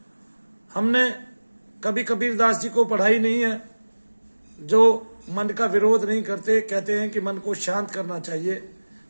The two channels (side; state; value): both; inverted; correlation -1.00